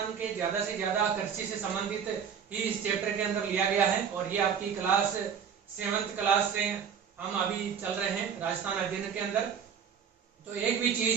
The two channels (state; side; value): quieter; left; 7.4 dB